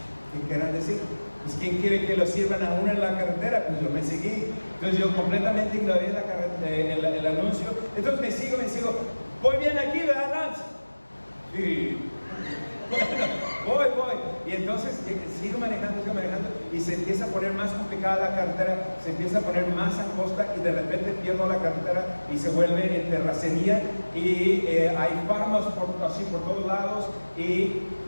¿qué querrán decir? Pues ¿quién quiere que lo sirvan a uno en la carretera? Pues yo me seguí. Entonces yo completamente ignoré el anuncio. Entonces me sigo. Voy bien aquí, ¿verdad, Lance? Sí. Bueno, voy. Y entonces sigo manejando y se empieza a poner más complicada la carretera, se empieza a poner más angosta y de repente pierdo la carretera y se vuelve en terracería y hay farmas así por todos lados y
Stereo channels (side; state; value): both; inverted; correlation -1.00